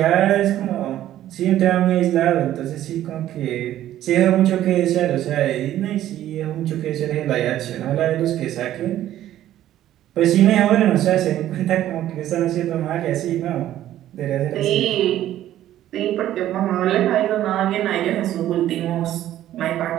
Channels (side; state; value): left; quieter; 12.8 dB